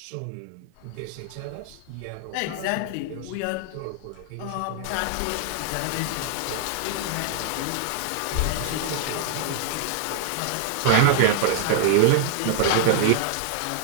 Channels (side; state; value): both; different; correlation 0.00